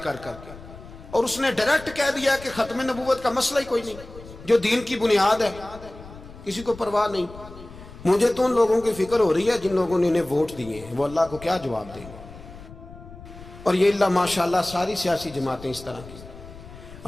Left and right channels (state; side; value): noise; left; rumble, 17 dB below the sound